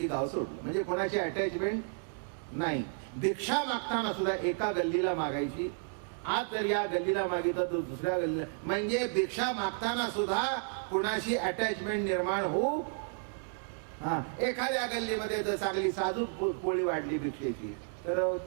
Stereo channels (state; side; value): silent; left; 56 dB below the other